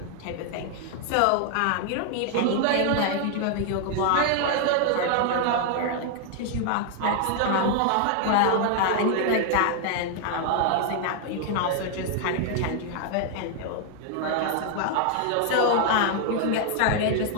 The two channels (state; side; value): different; both; correlation 0.00